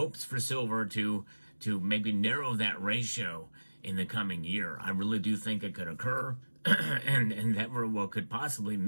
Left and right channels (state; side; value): inverted; both; correlation -1.00